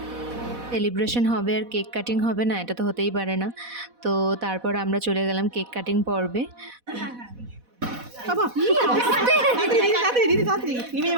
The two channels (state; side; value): late; left; 4.1 ms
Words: সেলিব্রেশন হবে আর কেক কাটিং হবে না, এটা তো হতেই পারে না। তো তারপর আমরা চলে গেলাম কেক কাটিং পর্বে।